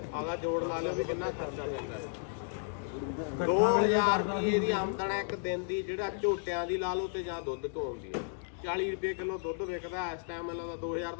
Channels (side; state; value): right; silent; digital silence